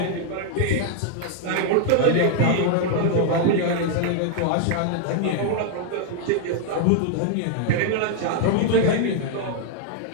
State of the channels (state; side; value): different; both; correlation 0.00